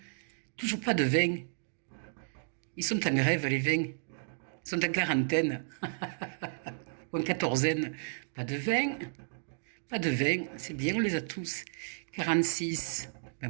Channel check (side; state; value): left; silent; digital silence